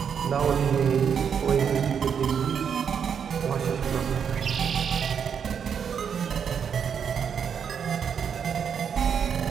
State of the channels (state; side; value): quieter; left; 7.4 dB